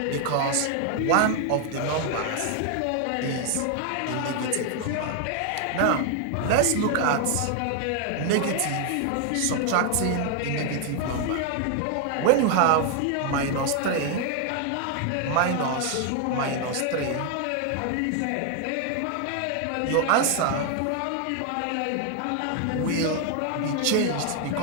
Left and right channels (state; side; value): different; both; correlation 0.00